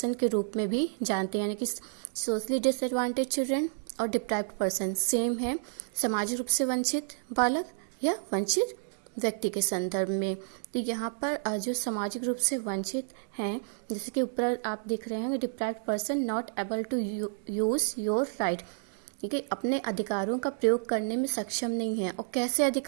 के रूप में भी जानते हैं। यानी कि सोशली डिसएडवांटेज चिल्ड्रन और डिप्राइव्ड पर्सन सेम है, सामाजिक रूप से वंचित बालक या वंचित व्यक्ति के संदर्भ में। तो यहाँ पर जो सामाजिक रूप से वंचित हैं, जैसे कि ऊपर आप देख रहे हैं, deprived person not able to use your right, कि अपने अधिकारों का प्रयोग करने में सक्षम नहीं है। और कैसे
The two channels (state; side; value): silent; left; digital silence